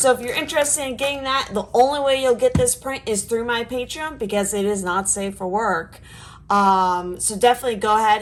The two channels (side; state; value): both; identical; correlation 1.00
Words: if you're interested in getting that, the only way you'll get this print is through my Patreon because it is not safe for work. So definitely go